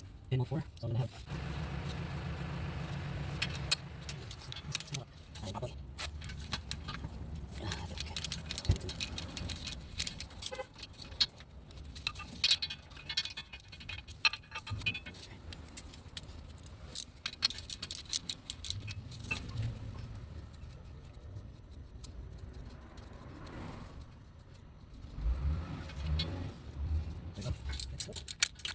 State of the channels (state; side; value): identical; both; correlation 1.00